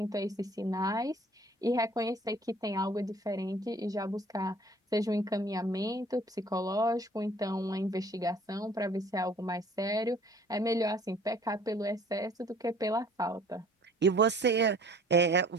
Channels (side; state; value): both; normal; correlation 0.53